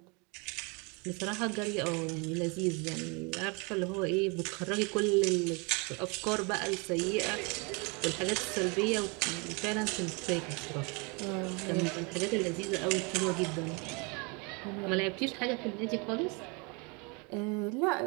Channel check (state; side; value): quieter; left; 30.8 dB